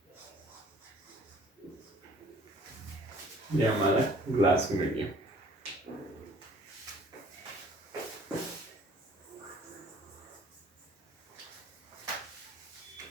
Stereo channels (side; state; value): both; normal; correlation 0.54